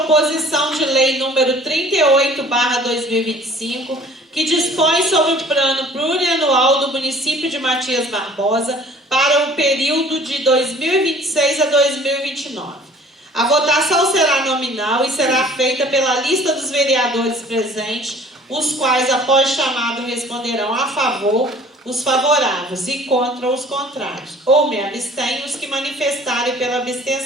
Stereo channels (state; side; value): normal; both; correlation 0.51